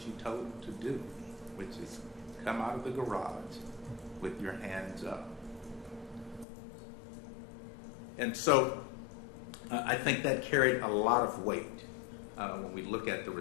you told him to do, which is come out of the garage with your hands up. And so I think that carried a lot of weight when we look at the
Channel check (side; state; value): right; drops out; at 6.5 s